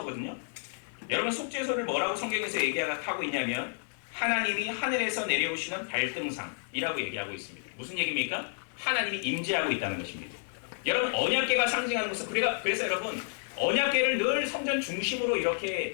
여러분 속죄소를 뭐라고 성경에서 얘기하고 있냐면 하나님이 하늘에서 내려오시는 발등상이라고 얘기하고 있습니다. 무슨 얘기입니까? 하나님이 임재하고 있다는 것입니다. 여러분 언약궤가 상징하는 것은 그래서 여러분 언약궤를 늘 성전 중심으로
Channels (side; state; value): right; silent; 57 dB below the other